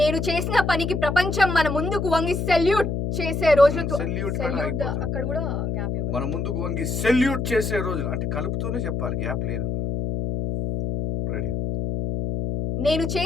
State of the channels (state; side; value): noise; left; hum, 1 dB below the sound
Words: చేసిన పనికి ప్రపంచం మన ముందుకు వంగి సెల్యూట్ చేసే రోజులు అక్కడ కూడా గ్యాప్ ఇవ్వాలి. మన ముందుకు వంగి సెల్యూట్ చేసే రోజులు అంటే కలుపుతూనే చెప్పాలి, గ్యాప్ లేదు. రెడీ? నేను